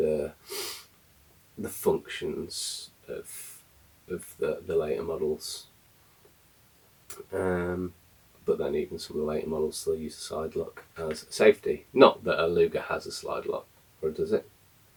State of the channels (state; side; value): identical; both; correlation 1.00